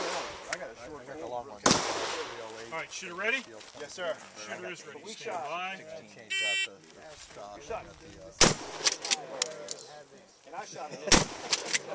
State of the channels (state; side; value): identical; both; correlation 1.00